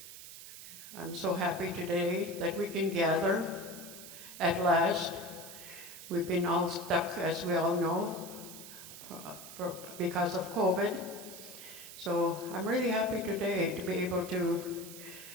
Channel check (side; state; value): right; noise; hiss, 13 dB below the sound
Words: I'm so happy today that we can gather at last. We've been all stuck, as we all know, because of COVID. So I'm really happy today to be able to